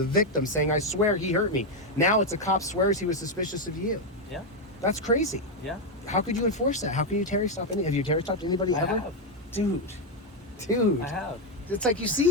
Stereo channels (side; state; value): both; normal; correlation 0.04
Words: victim saying, I swear he hurt me. Now it's a cop swears he was suspicious of you. Yeah. That's crazy. Yeah. How could you enforce that? How can you Terry stop have you Terry stopped anybody ever? I have. Dude. I have. It's like, you